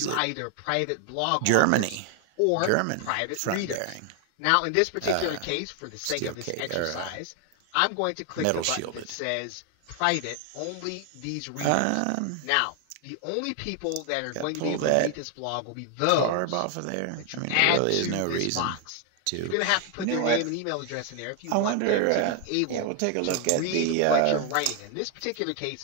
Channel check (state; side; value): different; both; correlation 0.00